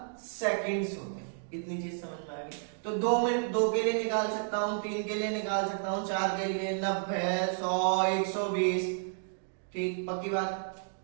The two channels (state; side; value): silent; left; digital silence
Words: सेकेंड्स होते हैं। इतनी चीज समझ में आ गई। तो 2 के लिए निकाल सकता हूं, 3 के लिए निकाल सकता हूं, 4 के लिए 90, 100, 120, ठीक, पक्की बात।